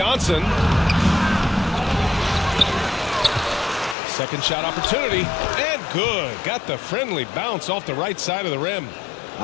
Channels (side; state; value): right; drops out; at 4.0 s